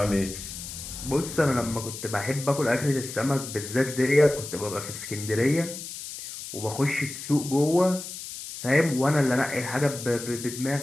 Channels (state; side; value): noise; left; hiss, 10 dB below the sound